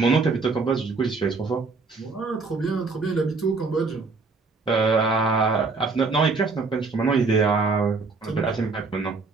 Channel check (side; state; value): left; quieter; 4.1 dB